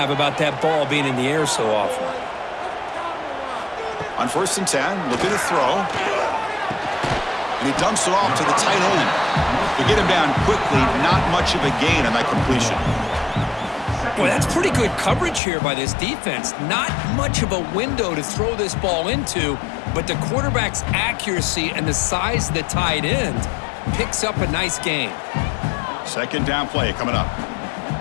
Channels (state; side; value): drops out; right; at 15.4 s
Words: about that ball being in the air so often. On 1st and 10, looking to throw. And he dumps it off to the tight end. To get him down quickly, not much of a gain on that completion. Boy, that's pretty good coverage here by this defense. Not much of a window to throw this ball into, but the quarterback's accuracy and the size of the tight end picks up a nice gain. 2nd down play coming up.